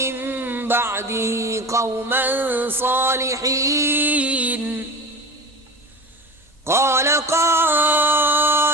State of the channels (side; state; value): both; normal; correlation 0.32